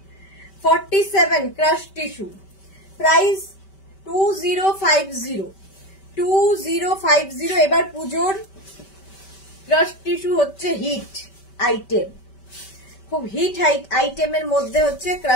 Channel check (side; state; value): right; late; 5.2 ms